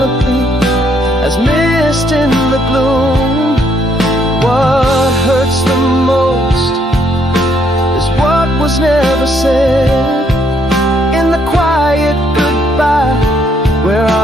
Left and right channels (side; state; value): both; normal; correlation 0.70